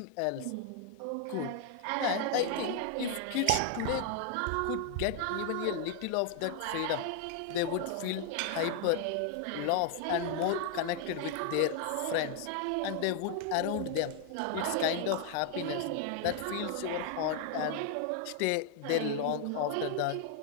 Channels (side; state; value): both; different; correlation 0.00